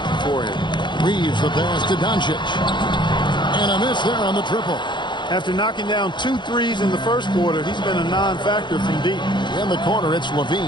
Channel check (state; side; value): late; right; 0.22 ms